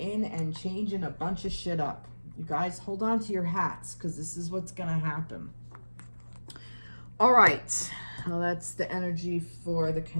and changing a bunch of shit up. You guys hold on to your hats, because this is what's going to happen. All right. Well, that's the energy for the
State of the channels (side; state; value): both; inverted; correlation -1.00